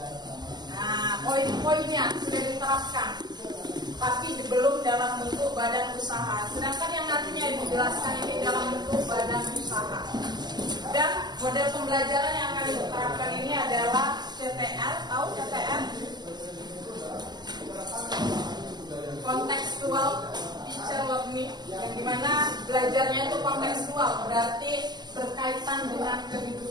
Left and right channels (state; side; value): late; left; 0.21 ms